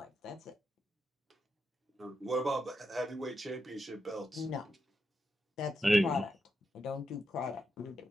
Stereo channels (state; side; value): normal; both; correlation 0.85